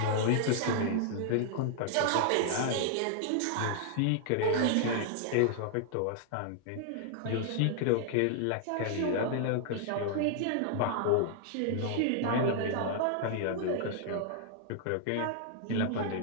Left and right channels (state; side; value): different; both; correlation -0.01